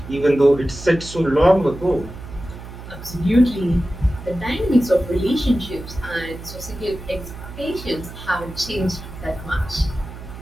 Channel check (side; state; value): right; noise; hum, 13 dB below the sound